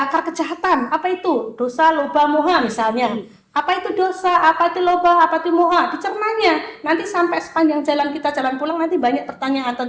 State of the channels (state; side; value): identical; both; correlation 1.00